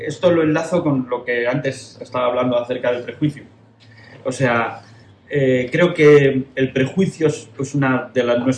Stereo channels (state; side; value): identical; both; correlation 1.00